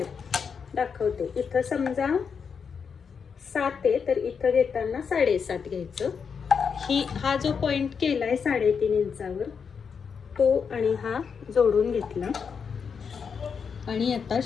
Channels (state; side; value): quieter; right; 6.3 dB